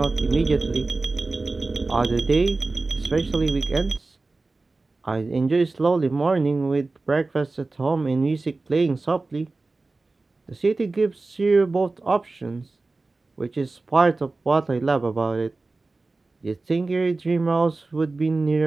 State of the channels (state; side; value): quieter; left; 3.5 dB